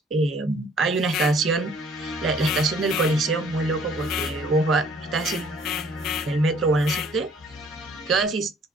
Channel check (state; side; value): normal; both; correlation 0.58